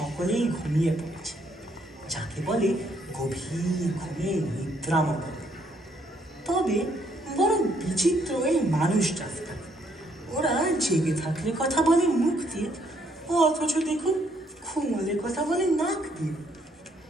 ঘুমিয়ে পড়েছে, যাকে বলে গভীর ঘুমে নিদ্রামগ্ন। তবে বড় বিচিত্র এই মানুষ জাতটা। ওরা জেগে থাকলে কথা বলে মুখ দিয়ে, অথচ দেখুন ঘুমলে কথা বলে নাক দিয়ে।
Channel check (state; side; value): normal; both; correlation 0.70